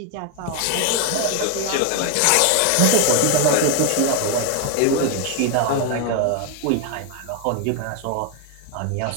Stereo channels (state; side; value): different; both; correlation 0.01